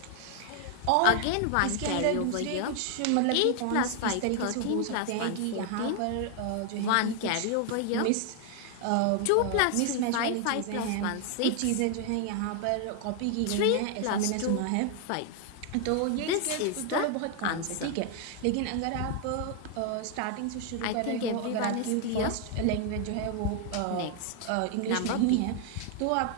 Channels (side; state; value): both; different; correlation 0.00